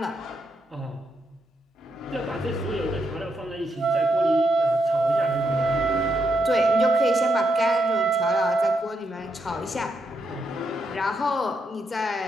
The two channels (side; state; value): both; normal; correlation 0.80